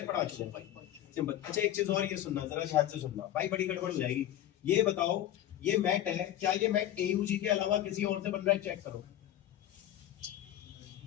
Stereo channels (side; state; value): right; quieter; 12.4 dB